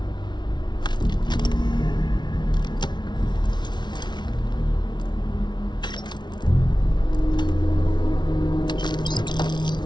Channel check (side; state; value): right; late; 0.21 ms